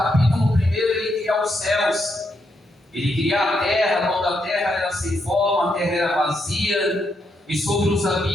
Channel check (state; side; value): normal; both; correlation 0.79